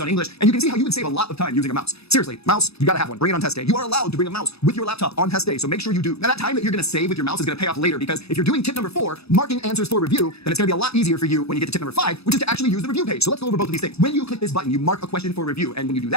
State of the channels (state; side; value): late; right; 0.78 ms